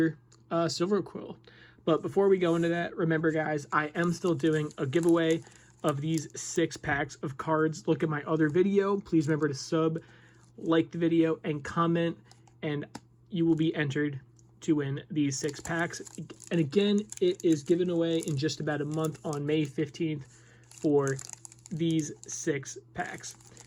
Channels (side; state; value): both; identical; correlation 1.00